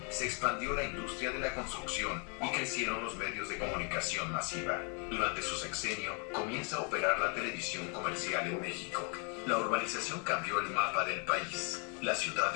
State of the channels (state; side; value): quieter; right; 35.7 dB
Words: se expandió la industria de la construcción y crecieron los medios de comunicación masiva. Durante su sexenio comienza a operar la televisión comercial en México. La urbanización cambió el mapa del país. Las